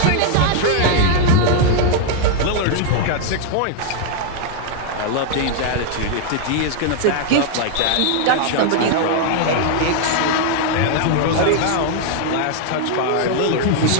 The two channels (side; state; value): both; different; correlation 0.00